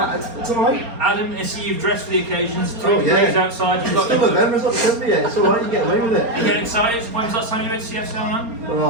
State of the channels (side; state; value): left; late; 4.3 ms